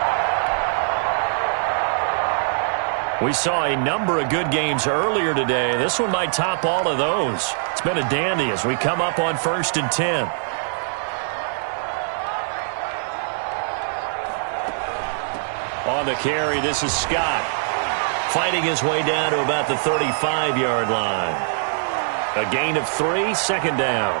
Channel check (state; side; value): silent; left; 64 dB below the other